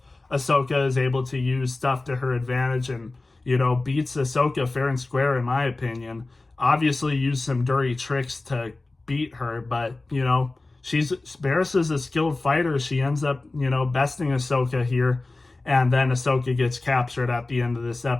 Ahsoka, is able to use stuff to her advantage, and, beats Ahsoka fair and square, in my opinion. Obviously used some dirty tricks to beat her, but, Barriss is a skilled fighter. She ends up, besting Ahsoka here, and then Ahsoka gets captured at the end of this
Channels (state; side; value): quieter; right; 3.2 dB